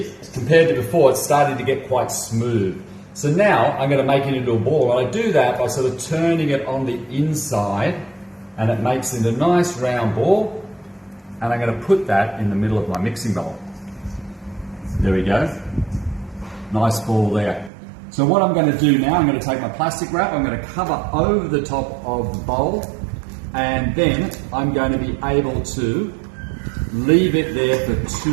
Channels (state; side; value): drops out; left; at 17.7 s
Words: compared to before, it's starting to get quite smooth. So now I'm going to make it into a ball. And I do that by sort of turning it on the inside, and it makes it a nice round ball. And I'm going to put that in the middle of my mixing bowl. There we go. Nice ball there. So what I'm going to do now, I'm going to take my plastic wrap, I'm going to cover over the top of the bowl, and then I'm going to be able to leave it there for